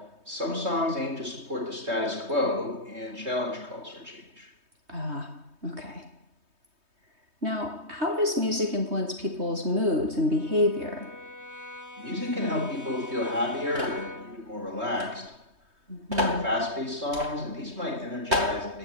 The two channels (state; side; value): late; left; 3.2 ms